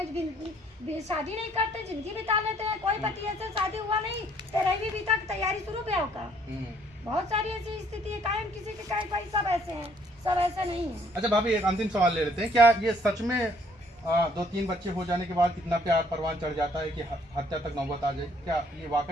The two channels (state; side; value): normal; both; correlation 0.63